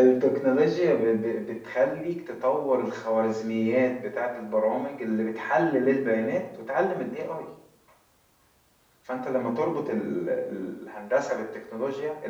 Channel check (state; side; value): identical; both; correlation 1.00